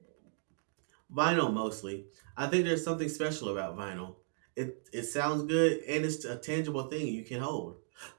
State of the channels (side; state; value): left; silent; digital silence